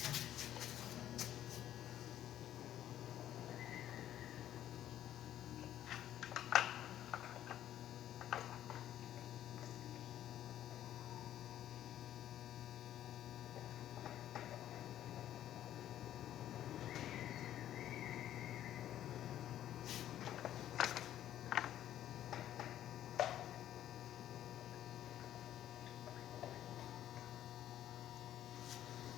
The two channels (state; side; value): quieter; right; 11.9 dB